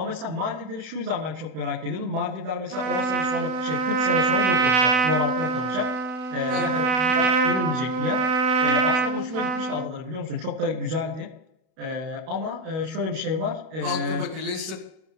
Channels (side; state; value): left; late; 32 ms